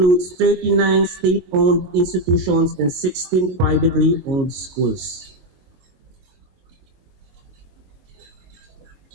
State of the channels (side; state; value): left; late; 22 ms